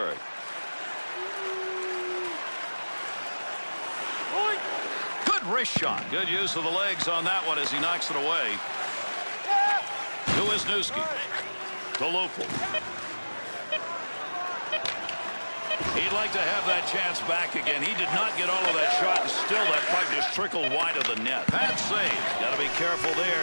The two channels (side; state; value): both; inverted; correlation -1.00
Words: Good wrist shot. Good use of the legs on that one as he knocks it away. To Wisniewski. To Lopel. He'd like to have that chance back again. He did not get all of that shot, and still that puck just trickled wide of the net. Pad save. Got to be careful there